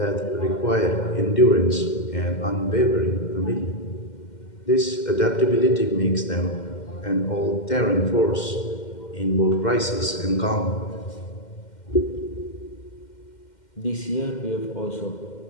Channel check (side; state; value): right; late; 2.1 ms